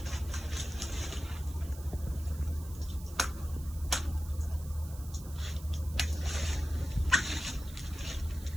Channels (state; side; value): noise; right; hiss, 18 dB below the sound